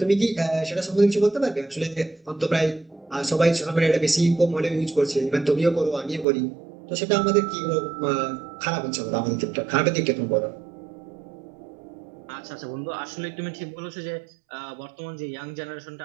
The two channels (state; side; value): drops out; left; at 6.2 s